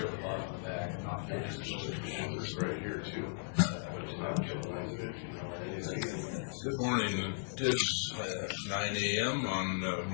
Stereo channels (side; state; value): right; silent; 53 dB below the other